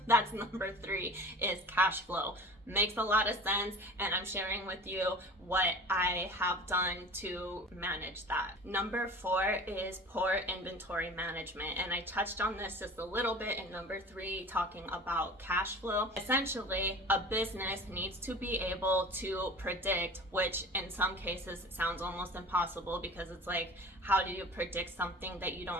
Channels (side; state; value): both; normal; correlation 0.40